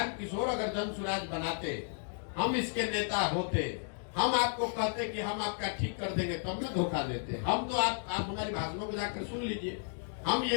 किशोर अगर जन स्वराज बनाते, हम इसके नेता होते, हम आपको कहते कि हम आपका ठीक कर देंगे, तब में धोखा देते। हम तो आप हमारी भाषणों को जाकर सुन लीजिए। हम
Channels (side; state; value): right; silent; 56 dB below the other